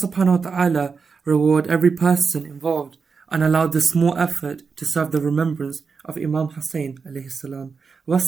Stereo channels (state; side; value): quieter; left; 5.2 dB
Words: wa ta'ala reward every person involved and allow this small effort to serve the remembrance of Imam Hussain alayhi salam.